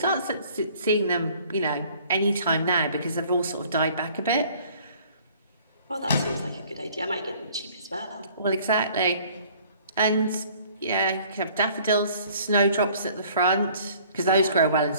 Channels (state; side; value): inverted; both; correlation -0.55